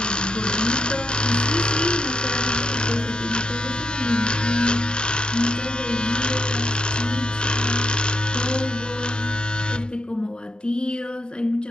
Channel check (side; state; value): right; late; 0.049 ms